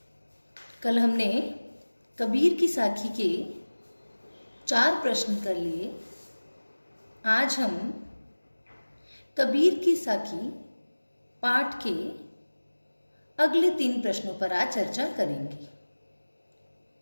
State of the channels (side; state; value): both; inverted; correlation -1.00